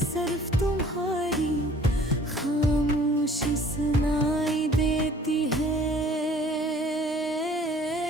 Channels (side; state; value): both; normal; correlation 0.53